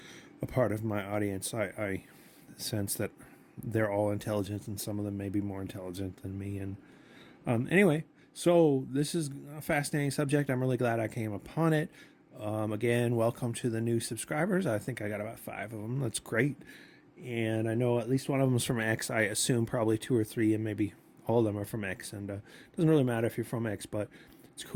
a part of my audience. I sense that they're all intelligent, and some of them may be more intelligent than me. And anyway, so this is a fascinating subject. I'm really glad I came upon it. Again, welcome to the new subscribers. I think I got about 5 of them. That's great. And I know at least one of them is from X. I assume probably 2 or 3, and maybe all of them are from X. And it doesn't really matter if you're from X, but it's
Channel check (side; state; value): both; identical; correlation 1.00